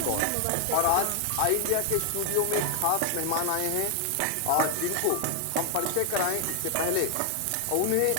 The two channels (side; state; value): both; different; correlation 0.00